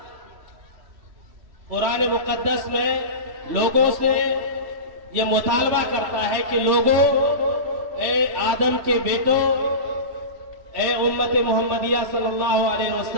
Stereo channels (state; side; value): late; left; 3.1 ms